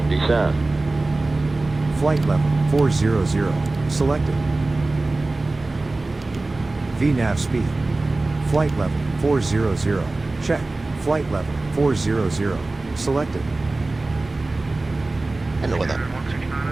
descend. Flight level 400. Selected. VNAV speed. Flight level 400. Check. Flight level 400. Selected. I know what that.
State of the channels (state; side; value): quieter; left; 3.2 dB